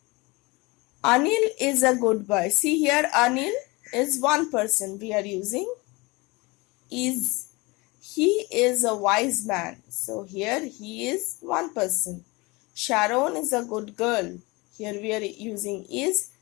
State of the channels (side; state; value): right; quieter; 24.7 dB